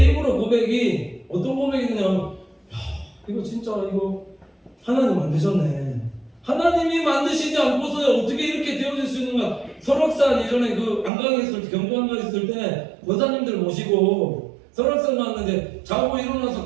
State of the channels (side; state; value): left; drops out; at 11.1 s